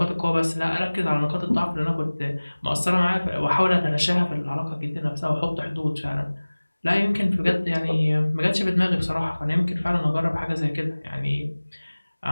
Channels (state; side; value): inverted; both; correlation -1.00